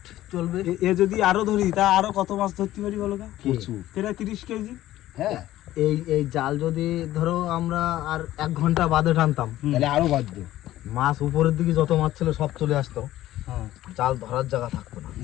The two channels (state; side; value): quieter; right; 14.6 dB